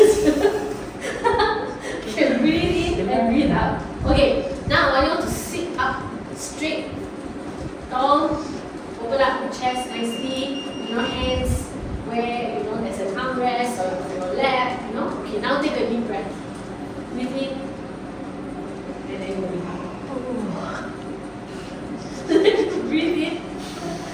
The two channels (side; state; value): both; identical; correlation 1.00